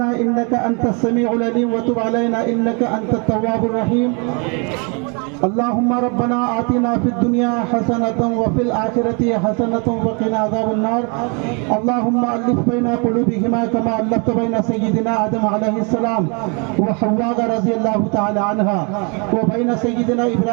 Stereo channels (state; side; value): quieter; left; 34.2 dB